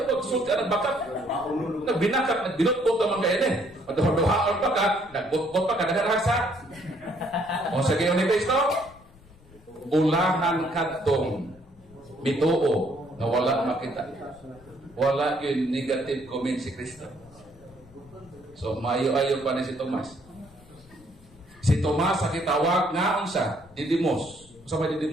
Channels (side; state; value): left; noise; rumble, 25 dB below the sound